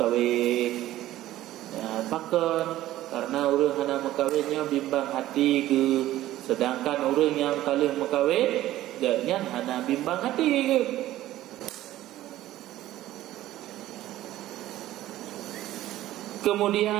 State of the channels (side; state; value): left; quieter; 14.7 dB